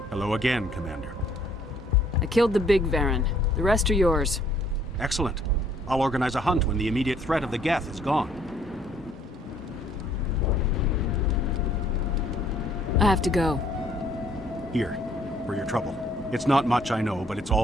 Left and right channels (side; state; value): both; normal; correlation 0.63